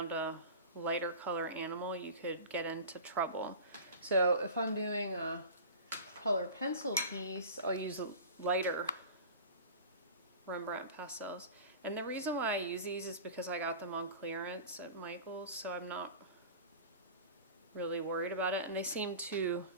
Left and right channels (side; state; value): both; inverted; correlation -0.36